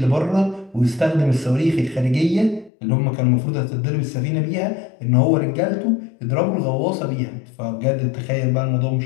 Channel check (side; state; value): right; drops out; at 2.7 s